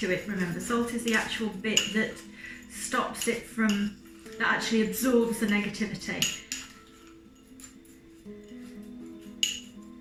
to it, remember. Salt is the actual bit that stops it from, that actually absorbs the negativity.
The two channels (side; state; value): both; identical; correlation 1.00